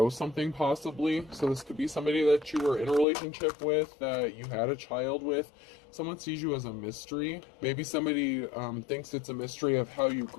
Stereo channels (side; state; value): right; drops out; at 3.1 s